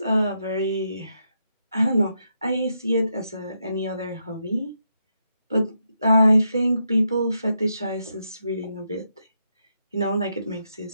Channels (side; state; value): both; inverted; correlation -0.82